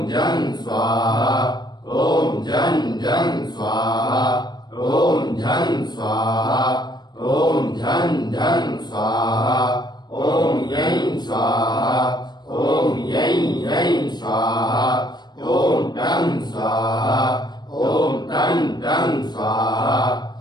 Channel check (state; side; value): late; right; 0.21 ms